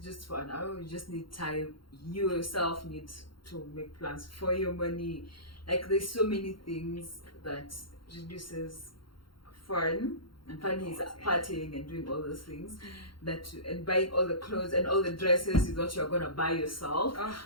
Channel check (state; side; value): late; right; 0.73 ms